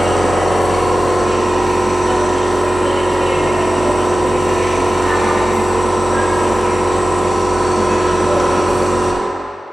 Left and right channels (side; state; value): both; normal; correlation 0.95